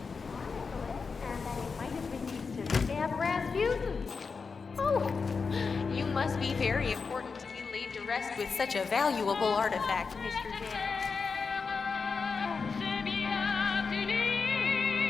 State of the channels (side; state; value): right; quieter; 5.0 dB